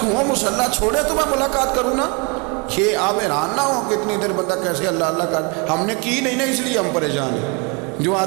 ہوں مصلی چھوڑے تو میں ملاقات کروں نا، یہ آپ حیران نہ ہو کہ اتنی دیر بندہ کیسے اللہ اللہ کر، ہم نے کی نہیں نا اس لیے ہم پریشان ہیں۔ جو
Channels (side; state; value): left; quieter; 32.3 dB